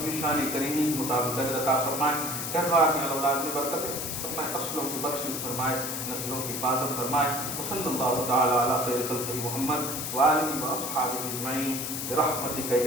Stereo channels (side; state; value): left; noise; hiss, 4 dB below the sound